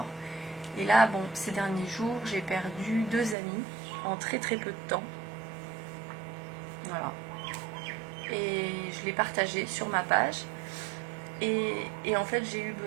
Et là, bon, ces derniers jours, j'ai perdu 2 amis en très très peu de temps. Voilà. Et je l'ai partagé sur ma page. Et en fait, j'ai eu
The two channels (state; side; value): drops out; left; at 3.4 s